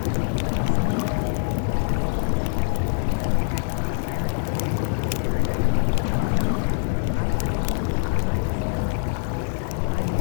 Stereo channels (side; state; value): right; silent; 62 dB below the other